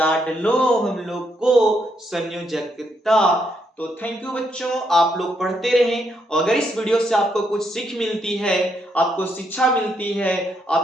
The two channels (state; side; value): normal; both; correlation 0.77